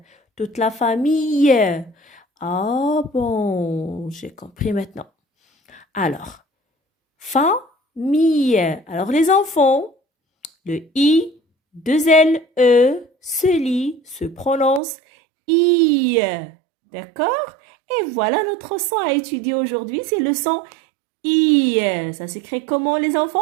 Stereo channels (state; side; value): drops out; left; at 14.8 s